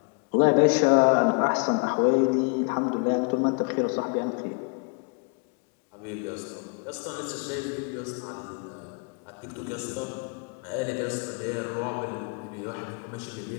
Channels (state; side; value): quieter; right; 35.1 dB